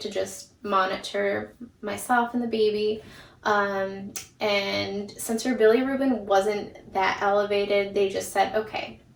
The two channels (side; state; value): both; identical; correlation 1.00